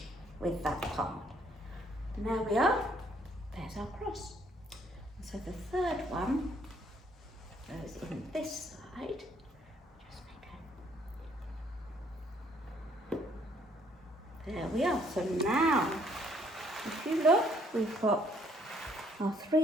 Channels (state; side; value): normal; both; correlation 0.65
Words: with that part. And there we are, there's our cross. So the third one goes in this side. Just make a... There we are. So now, if you look, we've got our